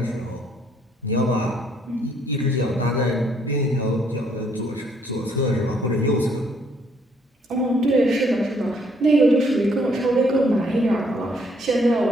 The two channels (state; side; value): normal; both; correlation 0.67